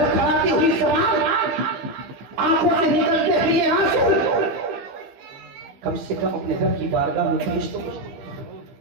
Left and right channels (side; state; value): left; late; 15 ms